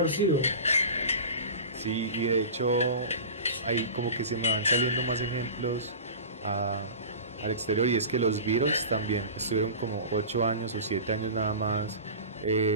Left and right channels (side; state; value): both; inverted; correlation -0.34